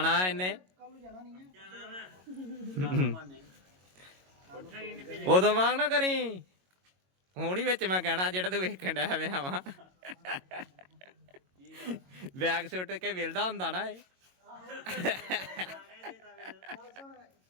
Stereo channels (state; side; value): late; left; 22 ms